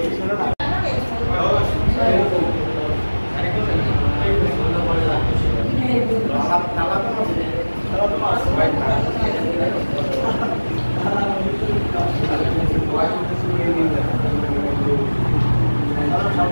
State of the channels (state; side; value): inverted; both; correlation -1.00